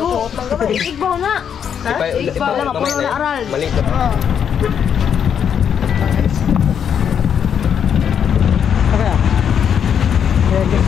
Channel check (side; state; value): right; quieter; 8.1 dB